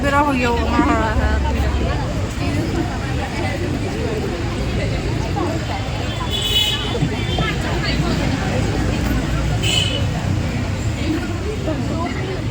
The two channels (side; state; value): both; identical; correlation 1.00